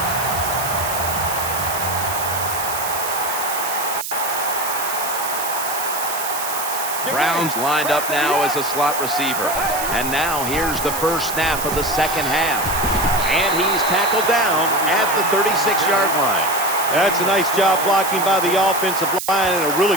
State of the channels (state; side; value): noise; right; hiss, 6 dB below the sound